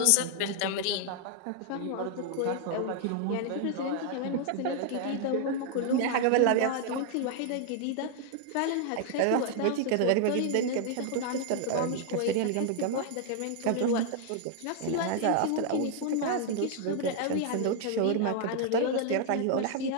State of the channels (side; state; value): both; different; correlation 0.00